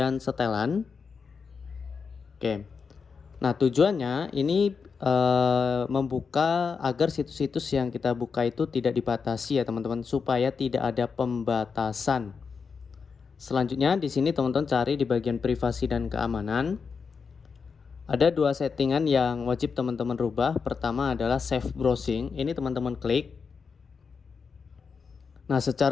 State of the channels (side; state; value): right; quieter; 5.5 dB